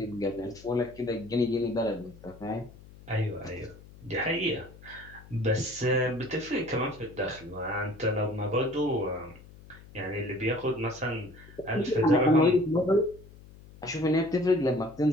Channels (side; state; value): left; noise; hum, 20 dB below the sound